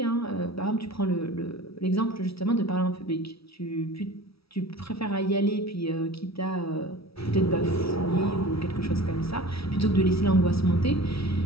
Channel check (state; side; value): late; right; 0.76 ms